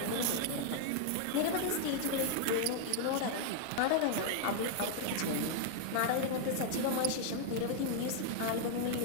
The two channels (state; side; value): different; both; correlation 0.00